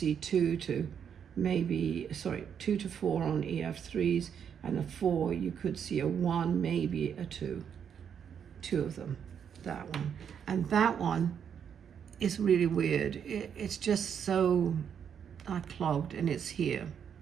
2 to 4 on EF3s, and a 4, you could see a 1, maybe a 2. 2 of them, that one. And that one is really weird. It's just so clogged, and it's here,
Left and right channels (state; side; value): quieter; left; 7.9 dB